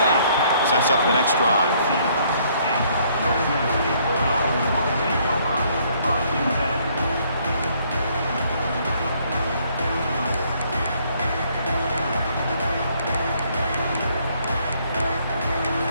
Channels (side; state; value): both; inverted; correlation -0.66